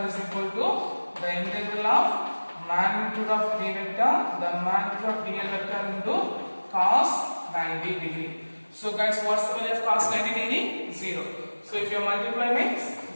is equal to the integral of magnitude of B vector, the magnitude of dl vector into cos 90 degree. So guys, what's the value of cos 90 degree? 0. So if you multiply means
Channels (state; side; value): inverted; both; correlation -1.00